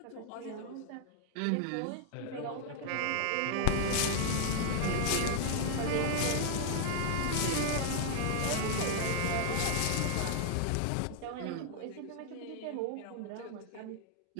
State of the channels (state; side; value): different; both; correlation -0.01